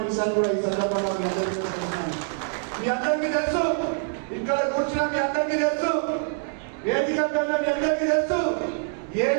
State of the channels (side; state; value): left; silent; digital silence